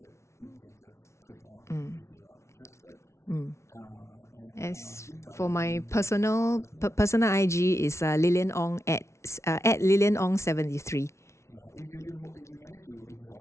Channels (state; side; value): late; right; 0.13 ms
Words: you can just click on if you are interested. These are for my personal IG is Lilian Ong at Lilian Ong 73. Yeah, if you manage to, if you are